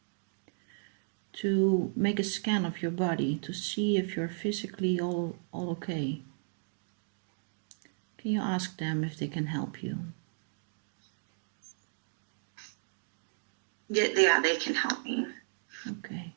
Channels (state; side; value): silent; left; digital silence